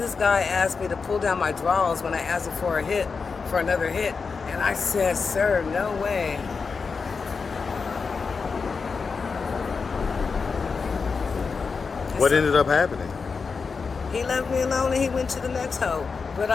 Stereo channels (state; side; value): quieter; right; 5.0 dB